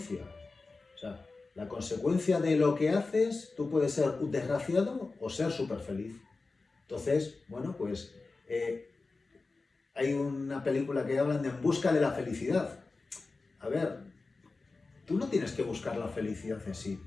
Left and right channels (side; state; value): right; quieter; 3.8 dB